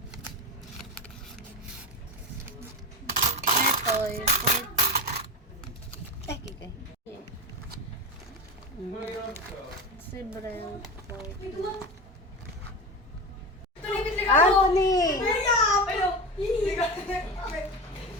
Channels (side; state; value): both; normal; correlation 0.23